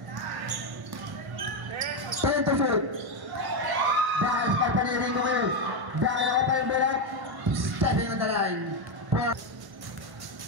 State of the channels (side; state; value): left; late; 1.1 ms